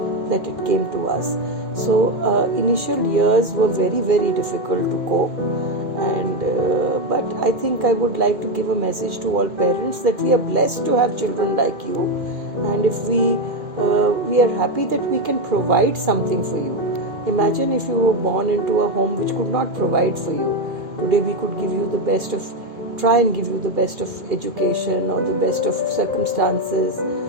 that it came to us. So initial years were very, very difficult to cope. And but I think I would like to give a message to all parents that we are blessed to have children like you, and if we are happy that we can provide something for you. Imagine if you were born into a home which could not provide for you. Today we could try and give you the best of education, or the best of circumstances,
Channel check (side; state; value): left; late; 2.1 ms